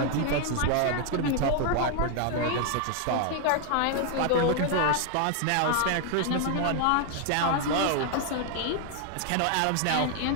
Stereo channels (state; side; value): different; both; correlation 0.00